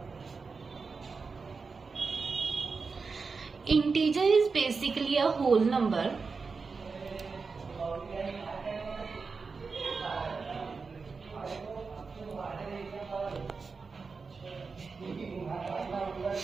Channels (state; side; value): quieter; left; 4.7 dB